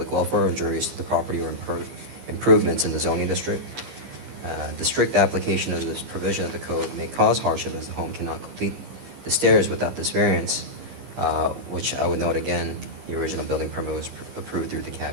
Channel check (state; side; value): late; left; 15 ms